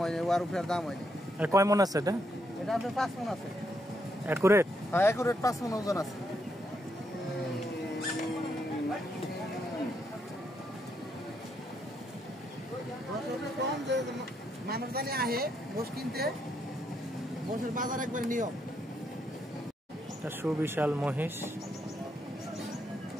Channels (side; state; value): both; normal; correlation 0.77